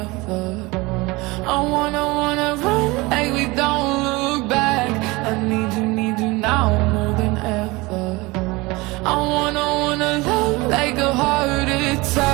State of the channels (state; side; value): quieter; left; 23.1 dB